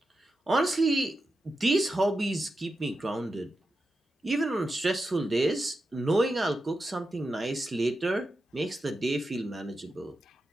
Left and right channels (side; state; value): both; normal; correlation 0.89